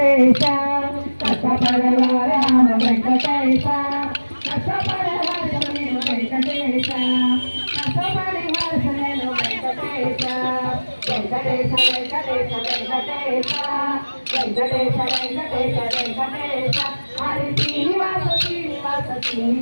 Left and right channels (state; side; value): inverted; both; correlation -1.00